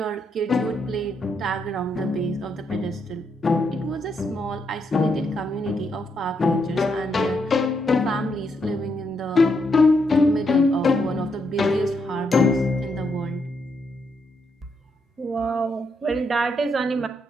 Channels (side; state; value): both; normal; correlation 0.78